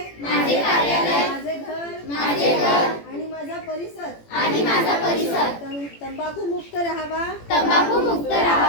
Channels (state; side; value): late; right; 18 ms